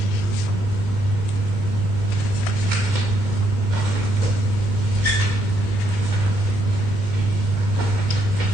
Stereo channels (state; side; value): late; left; 2.1 ms